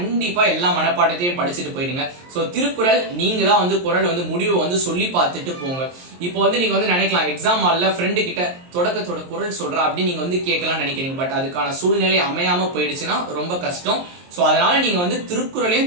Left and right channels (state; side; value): late; left; 23 ms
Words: எல்லா மனப்பாடத்தையும் படிச்சுட்டு போயிடுங்க. ஸோ திருக்குறள் நீங்க தான் வந்து குறள் வந்து முடிவை வந்து சொல்லி பார்த்துட்டு போங்க. இப்போ வந்து நீங்க வந்து நினைக்கலாம் எக்ஸாம் ஹால்ல ஃப்ரெண்டு கிட்ட தொடக்கத்தோட குறள் சொல்றா அப்படின்னு நீங்க வந்து கேட்கலாம் நினைக்கிறீங்க. பட் அதுக்கான சூழ்நிலை அமையாம போயிடுச்சுன்னா ரொம்ப கஷ்டம். ஸோ அதனால நீங்க வந்து